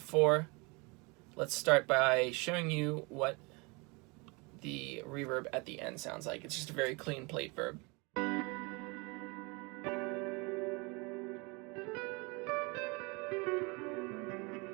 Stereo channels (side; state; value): left; quieter; 28.4 dB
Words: Let's start by showing you what the reverb at the end sounds like. It's just a very clean plate verb.